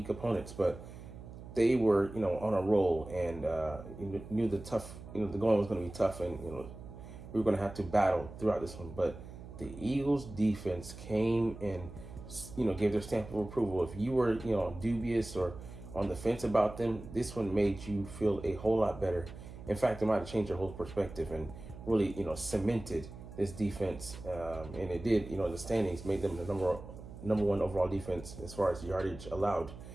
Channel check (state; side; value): noise; right; hum, 14 dB below the sound